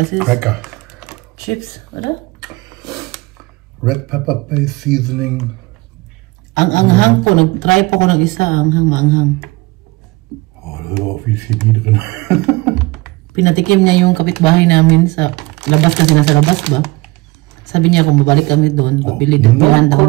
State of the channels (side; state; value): left; quieter; 22.6 dB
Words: ist Lecker. Chips, oder? Red pepper paste seasoning. Ang anghang po, nag-try po ko ng isa, anghang, maanghang. Oh, da ist auch viel Chemie drin. Pinatikim niya yung kapitbahay namin sa labas kasi nasa labas ba? Sabi niya kung babalik kami doon, pabili doon. No Daw namin siya.